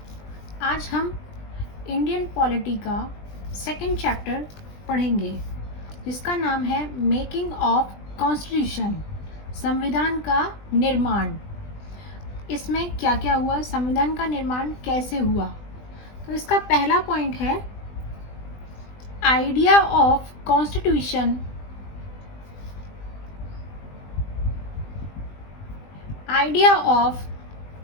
आज हम Indian polity का सेकंड चैप्टर पढ़ेंगे जिसका नाम है मेकिंग ऑफ कॉन्स्टिट्यूशन, संविधान का निर्माण। इसमें क्या क्या हुआ, संविधान का निर्माण कैसे हुआ। तो इसका पहला पॉइंट है idea of constitution. Idea of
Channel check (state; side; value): late; right; 20 ms